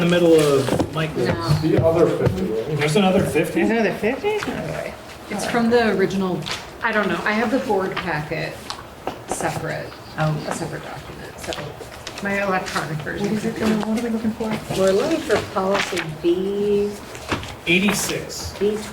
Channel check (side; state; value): both; identical; correlation 1.00